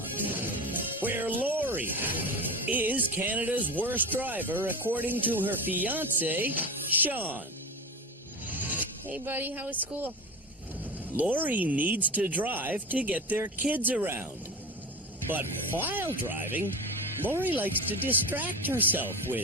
where Lori is Canada's worst driver according to her fiancé, Sean. Hey, buddy, how was school? Lori needs to drive to get their kids around. But while driving, Lori likes to distract herself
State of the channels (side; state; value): both; normal; correlation 0.27